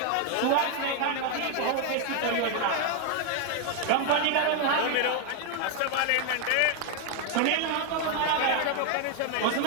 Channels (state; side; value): different; both; correlation 0.01